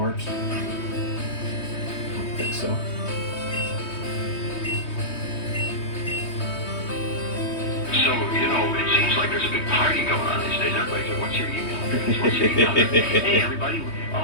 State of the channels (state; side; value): late; right; 3.2 ms